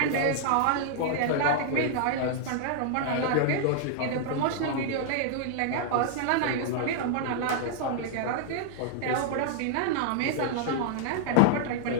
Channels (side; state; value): both; different; correlation -0.01